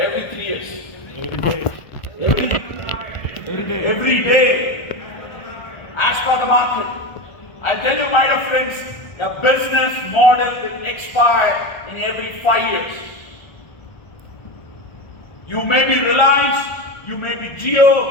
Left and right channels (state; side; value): late; right; 1.5 ms